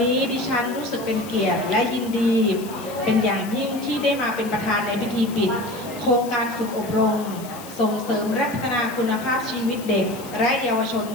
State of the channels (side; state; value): left; noise; hiss, 16 dB below the sound